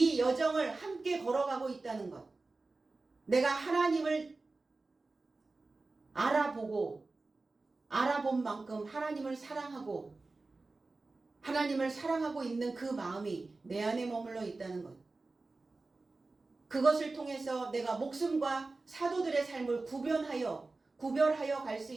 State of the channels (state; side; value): quieter; left; 3.5 dB